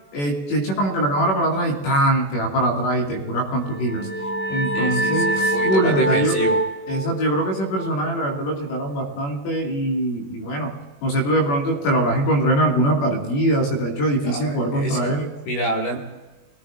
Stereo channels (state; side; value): late; right; 21 ms